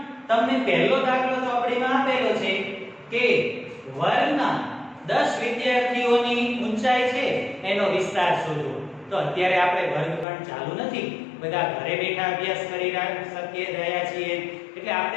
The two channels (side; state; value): right; drops out; at 10.2 s